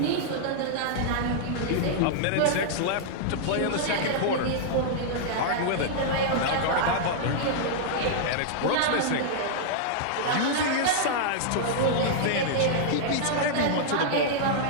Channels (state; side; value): different; both; correlation -0.01